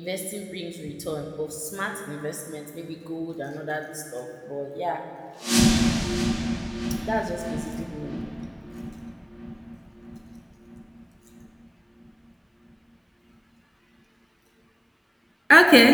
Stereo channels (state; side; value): identical; both; correlation 1.00